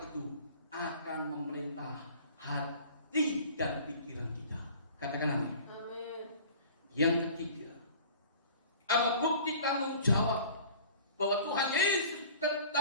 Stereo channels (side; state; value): both; inverted; correlation -0.45